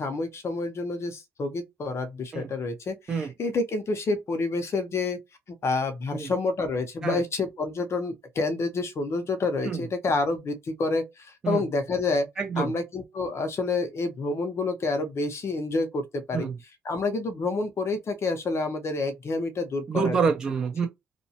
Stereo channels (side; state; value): both; normal; correlation 0.66